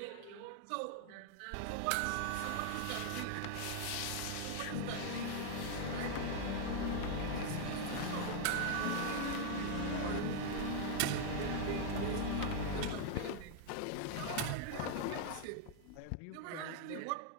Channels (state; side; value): different; both; correlation 0.00